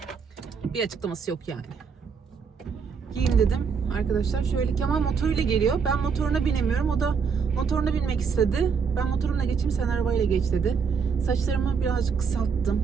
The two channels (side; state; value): left; quieter; 6.0 dB